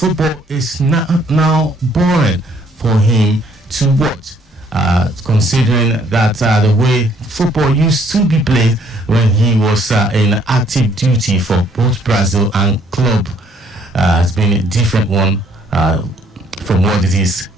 is now boring for him to watch, considering that the way football used to be played when he was in active duty for both Brazil and club has been a different one from what it is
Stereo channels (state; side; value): normal; both; correlation 0.64